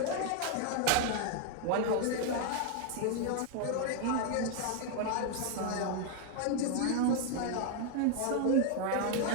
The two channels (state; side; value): different; both; correlation 0.00